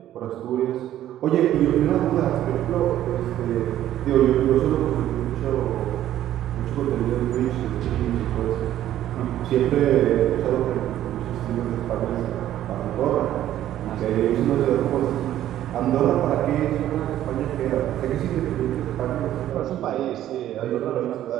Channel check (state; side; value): quieter; left; 12.4 dB